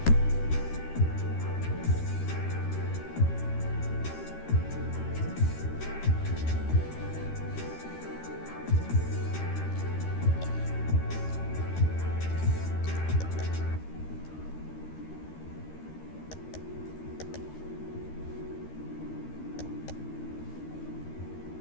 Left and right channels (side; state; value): right; late; 13 ms